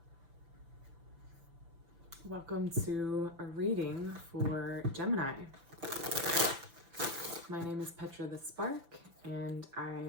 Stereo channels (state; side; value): late; left; 6.0 ms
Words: Welcome to a reading for Gemini. My name is Petra the Spark, and I